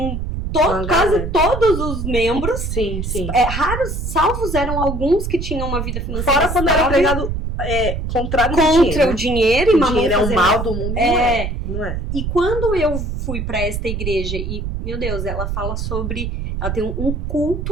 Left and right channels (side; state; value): right; noise; rumble, 4 dB below the sound